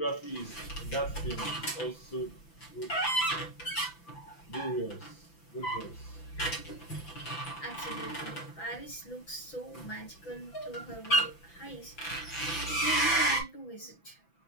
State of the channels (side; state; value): right; late; 6.0 ms